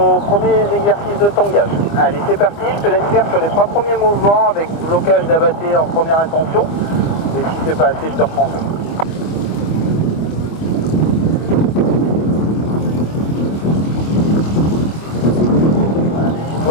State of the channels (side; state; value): right; late; 25 ms